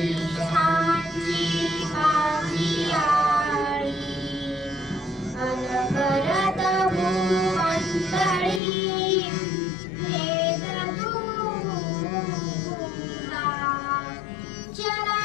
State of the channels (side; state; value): right; drops out; at 8.6 s